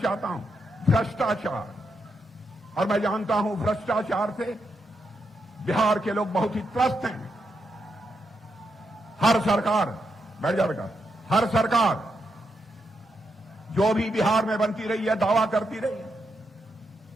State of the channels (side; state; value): both; normal; correlation 0.83